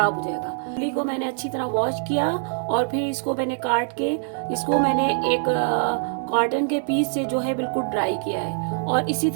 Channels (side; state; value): left; silent; 63 dB below the other